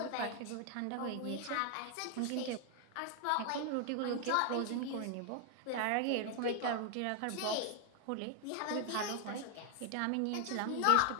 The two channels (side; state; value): both; different; correlation 0.00